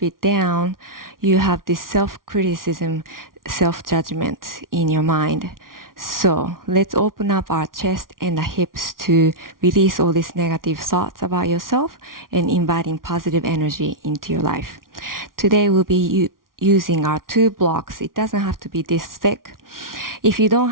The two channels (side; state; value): left; late; 0.91 ms